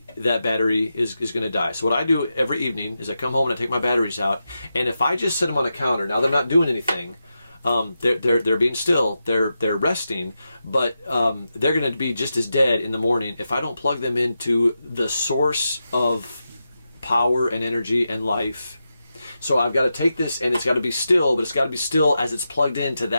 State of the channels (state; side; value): inverted; both; correlation -0.89